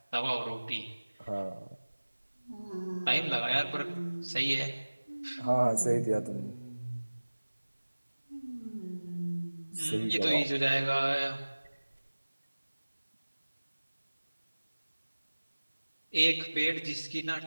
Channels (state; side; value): inverted; both; correlation -1.00